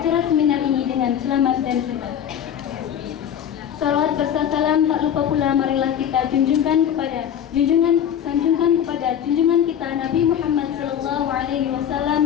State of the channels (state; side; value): quieter; right; 9.4 dB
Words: seminar ini dengan selamat dan sehat. Salawat serta salam tak lupa pula marilah kita sanjungkan kepada junjungan kita Nabi Muhammad sallallahu alaihi